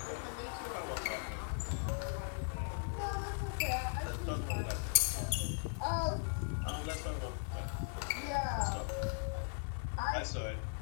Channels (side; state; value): right; silent; 52 dB below the other